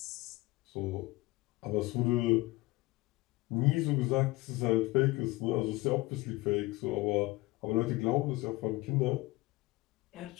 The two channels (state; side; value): quieter; right; 21.0 dB